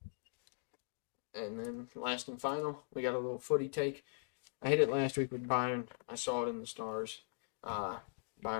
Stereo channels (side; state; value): right; silent; digital silence